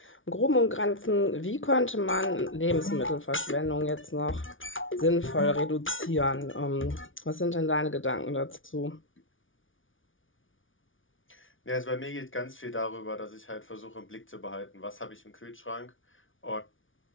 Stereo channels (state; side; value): late; right; 0.57 ms